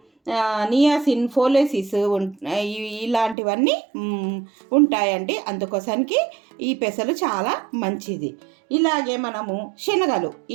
నియాసిన్, ఫోలేసిస్ ఇలాంటివన్నీ ఉంటాయండి. అందుకోసానికి ఈ పెసలు చాలా మంచిది. ఇలాగే మనము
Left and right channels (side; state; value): left; drops out; at 3.4 s